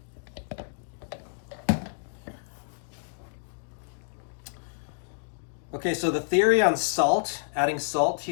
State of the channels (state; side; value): silent; right; digital silence